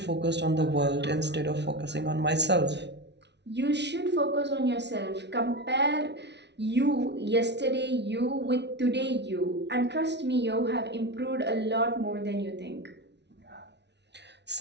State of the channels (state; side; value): late; left; 0.50 ms